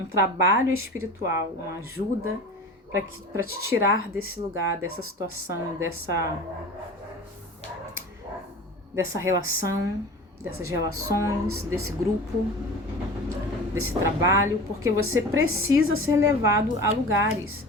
trabalho espiritual, uma ajuda para te tirar desse lugar, dessa situação, dessa relação, dessas relações, desse grupo, desse trabalho, porque você precisa ser levado a lugares.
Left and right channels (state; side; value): normal; both; correlation 0.36